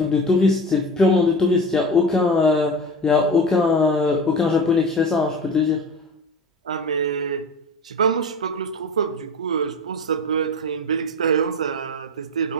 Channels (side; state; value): both; normal; correlation 0.31